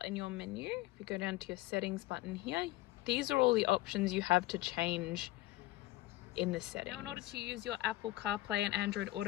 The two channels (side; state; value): right; quieter; 17.9 dB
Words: in your menu. If you go down to your settings button here, these are all the options you have to change in the settings. Now in order to use your Apple CarPlay and Android